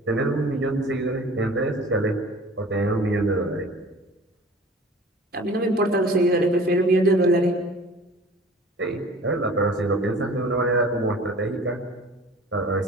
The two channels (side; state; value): both; normal; correlation 0.44